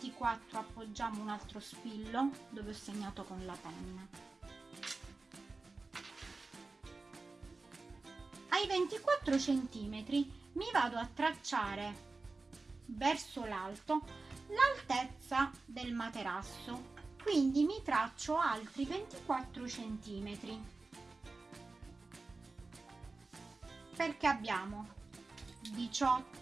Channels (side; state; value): left; quieter; 3.7 dB